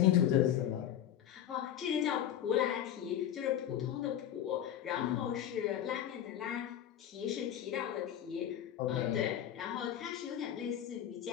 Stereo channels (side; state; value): right; quieter; 10.7 dB